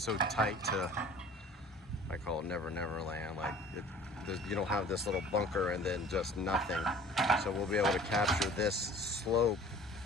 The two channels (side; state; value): both; normal; correlation 0.47